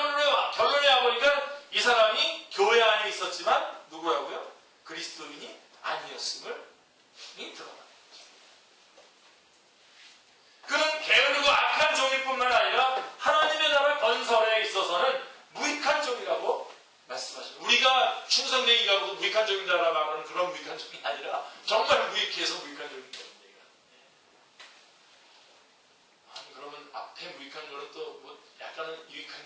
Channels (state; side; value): identical; both; correlation 1.00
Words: 와보니까 이 사람이 교회 안에 있었지만 누구라고요? 그리스도인이 아니었음을 드러납니다. 그는 게으르고 악한 종일 뿐만 아니라 하나님의 나라 건설에 있어서는 무익한 종이라고 말씀하십니다. 우리가 충성되게 일하고 무익한 종이다라고 말하는 그런 무익한 종이 아니라 정말 무익해서 무익한 종이다. 아니 그러면 앞에 무익한 거는 또 뭐 약간은 유익한